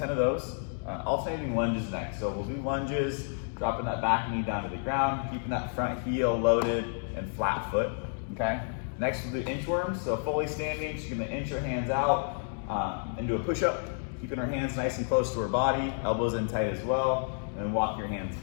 of those. Alternating lunges next. So we'll do lunges, dropping that back knee down to the ground, keeping that front heel loaded and flat foot, okay? Next we'll do inchworms, so fully standing, she's gonna inch her hands out and do a push-up, keeping her hands nice and close to her body, elbows in tight as well, and then walk your hands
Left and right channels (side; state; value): right; silent; digital silence